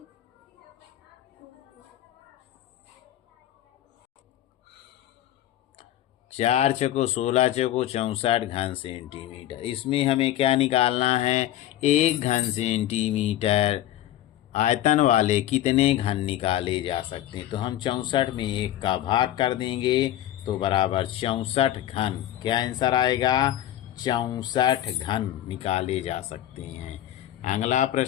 4 चौको 16 चौको 64 घन सेंटीमीटर। इसमें हमें क्या निकालना है 1 घन सेंटीमीटर आयतन वाले कितने घन निकाले जा सकते हैं। तो हम 64 में 1 का भाग कर देंगे तो बराबर 64 घन। क्या आंसर आएगा 64 घन निकाले जा सकते हैं। अगला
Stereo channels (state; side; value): quieter; right; 12.8 dB